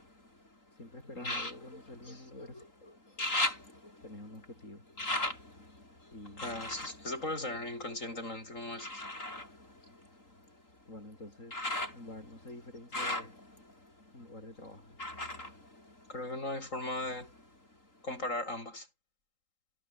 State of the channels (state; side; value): late; right; 3.8 ms